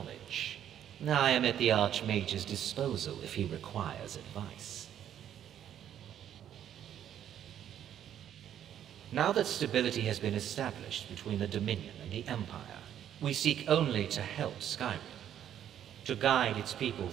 I am at the Archmage's disposal if he requires advice. Now that stability has been established between the Dominion and the Empire, we seek only to help Skyrim, to guide its people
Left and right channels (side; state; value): left; quieter; 10.3 dB